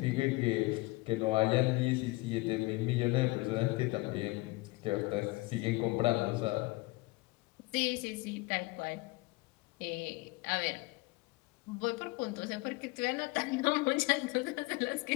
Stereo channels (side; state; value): right; quieter; 23.1 dB